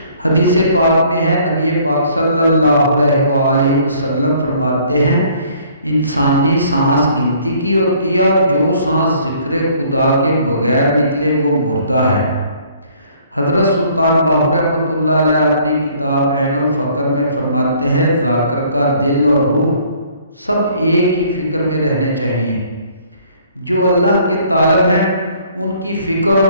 हदीस पाक में है, नबी पाक सल्लल्लाहु अलैहि वसल्लम फरमाते हैं, इंसानी सांस गिनती की होती है और जो सांस जिक्र खुदा के बगैर निकले वो मुर्दा है। हज़रत सुल्तान बाहू रहमतुल्लाह अलैह अपनी किताब ऐनुल फ़क्र में फरमाते हैं, ज़ाकिर का दिल और रूह सब एक ही फ़िक्र में रहने चाहिए। जो अल्लाह के तालब हैं उनकी फ़िक्र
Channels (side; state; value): both; inverted; correlation -0.59